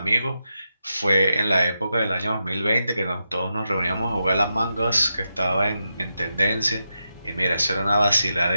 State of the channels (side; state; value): both; inverted; correlation -0.87